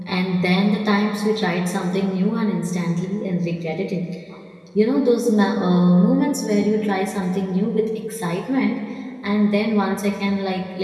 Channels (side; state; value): both; identical; correlation 1.00